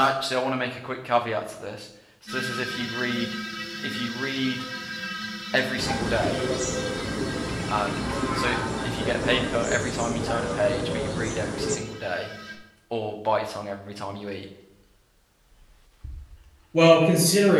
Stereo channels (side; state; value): both; identical; correlation 1.00